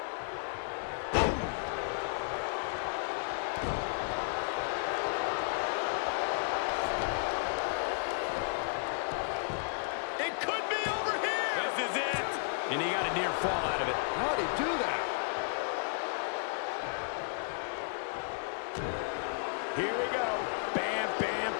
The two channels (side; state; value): right; silent; 56 dB below the other